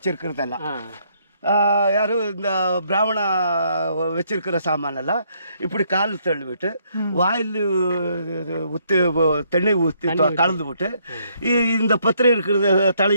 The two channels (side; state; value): both; inverted; correlation -0.70